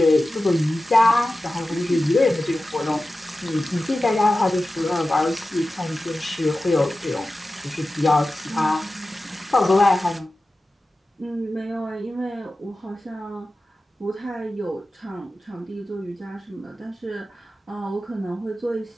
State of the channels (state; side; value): normal; both; correlation 0.94